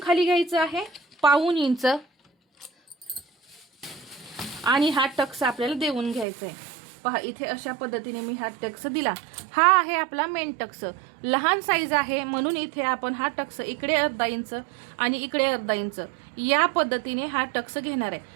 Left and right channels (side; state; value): left; drops out; at 6.2 s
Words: खाली घ्यायचं आहे 1.25 इंच आणि हा टक्स आपल्याला देऊन घ्यायचा आहे. पहा इथे अशा पद्धतीने मी हा टक्स दिला. हा आहे आपला मेन टक्स. लहान साईज आहे म्हणून इथे आपण हा टक्स इकडे 1/2 इंच आणि इकडे 1/2 इंच या पद्धतीने हा टक्स घेणार आहे.